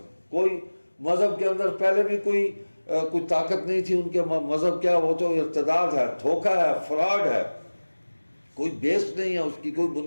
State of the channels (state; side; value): inverted; both; correlation -1.00